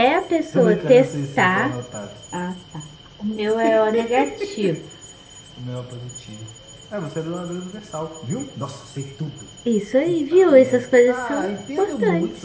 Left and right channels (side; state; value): both; identical; correlation 1.00